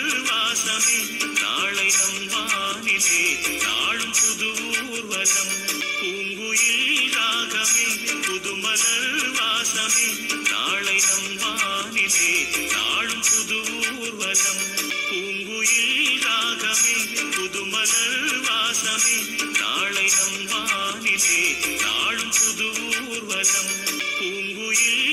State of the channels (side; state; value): both; identical; correlation 1.00